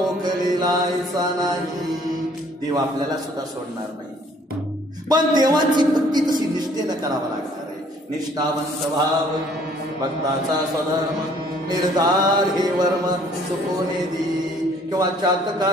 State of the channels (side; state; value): both; normal; correlation 0.59